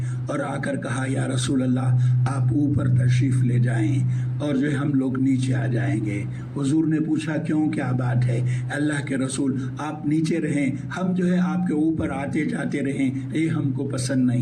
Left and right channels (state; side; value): identical; both; correlation 1.00